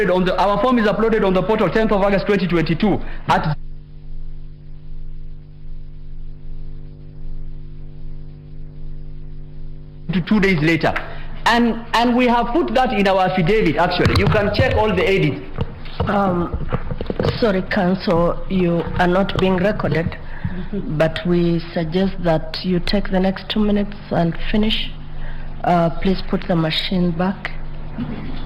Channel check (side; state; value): both; identical; correlation 1.00